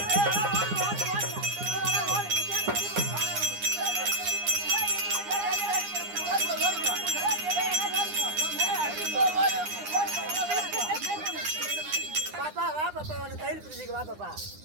பாப்பா வா பாப்பா உன்னை கையில் பிடிச்சிக்க வா பாப்பா.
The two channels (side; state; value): left; late; 9.8 ms